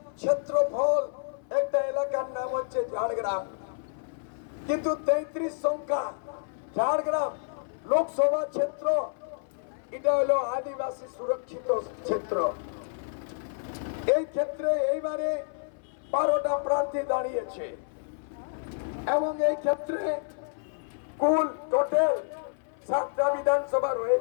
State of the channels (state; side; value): silent; right; 59 dB below the other